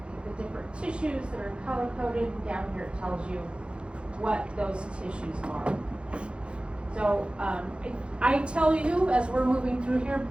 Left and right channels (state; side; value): late; left; 0.057 ms